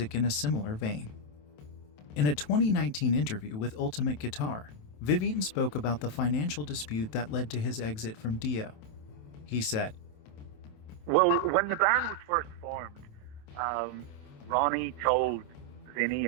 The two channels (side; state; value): right; late; 27 ms